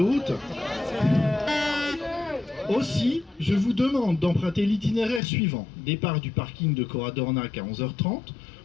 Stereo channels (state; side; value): drops out; right; at 5.2 s